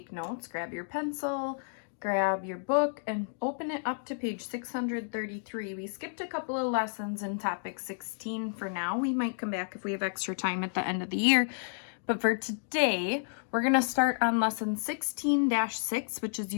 notes, grab your pencil, grab your book, and open it up to page 633. We skipped a couple of lessons in topic 16 for now. We might come back if we have extra time at the end of the year. But for today, we're going to start on lesson 16-6, which is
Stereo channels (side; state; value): right; silent; digital silence